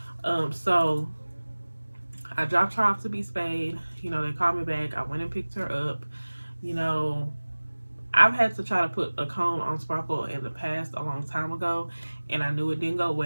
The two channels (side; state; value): both; inverted; correlation -1.00